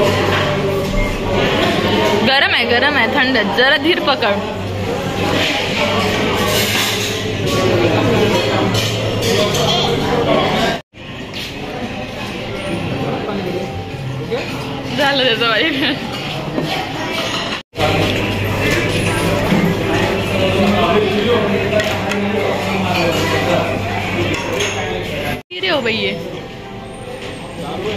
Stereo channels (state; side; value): identical; both; correlation 1.00